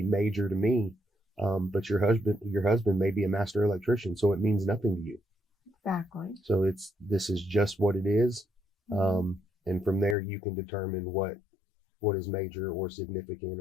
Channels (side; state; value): right; drops out; at 10.2 s